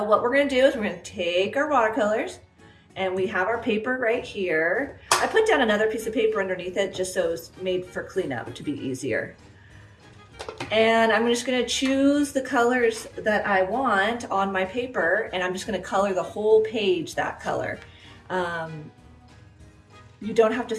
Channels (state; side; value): identical; both; correlation 1.00